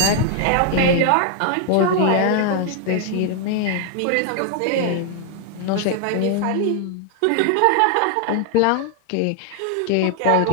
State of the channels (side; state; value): both; different; correlation 0.00